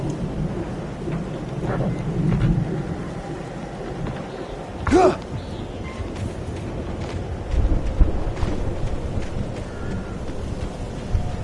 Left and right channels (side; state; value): both; identical; correlation 1.00